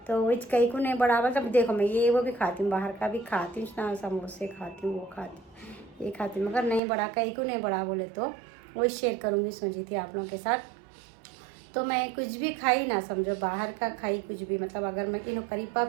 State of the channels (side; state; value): left; drops out; at 6.8 s